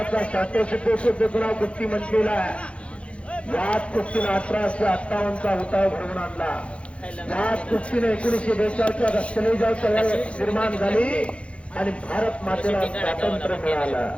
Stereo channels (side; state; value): right; late; 0.061 ms